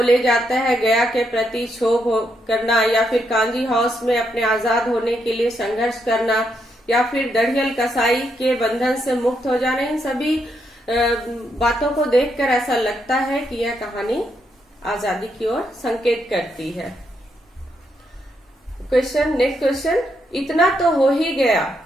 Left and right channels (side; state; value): both; normal; correlation 0.79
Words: जाता है, गया के प्रति क्षोभ करना या फिर कांजी हाउस में अपने आजाद होने के लिए संघर्ष करना या फिर दढ़ियल कसाई के बंधन से मुक्त हो जाना, इन सभी बातों को देखकर ऐसा लगता है कि यह कहानी आजादी की ओर संकेत करती है। नेक्स्ट क्वेश्चन, इतना तो हो ही गया